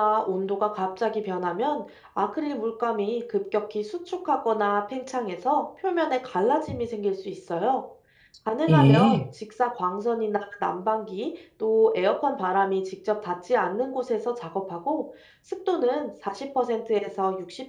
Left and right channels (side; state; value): both; identical; correlation 1.00